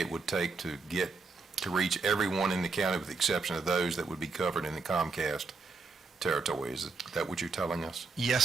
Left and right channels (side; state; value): left; quieter; 4.3 dB